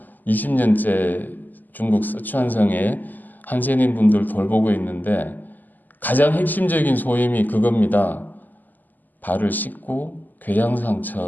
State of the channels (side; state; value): right; late; 0.085 ms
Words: 20년째 중국 스촨성에 한센인 분들 돌보고 있는데 가장 핵심적인 소임이 그겁니다. 발을 씻고